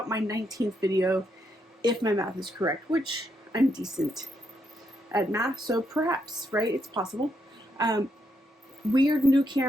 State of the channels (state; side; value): normal; both; correlation 0.78